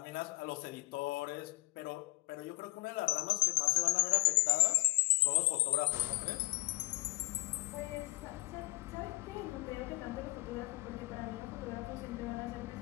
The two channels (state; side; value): quieter; right; 25.5 dB